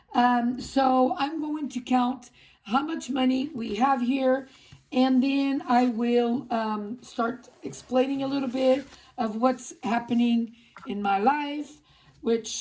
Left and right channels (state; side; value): identical; both; correlation 1.00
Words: So I'm going to count how much money we have here, and then I will start explaining a little bit of what's happening in my life,